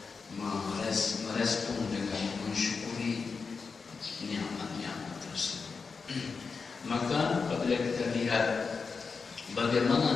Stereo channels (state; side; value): quieter; right; 5.0 dB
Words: merespon dengan mensyukuri nikmat-nikmat tersebut. Maka apabila kita lihat